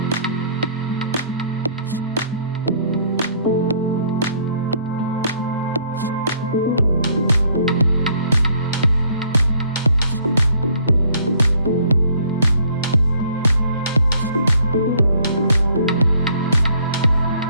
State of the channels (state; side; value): inverted; both; correlation -0.61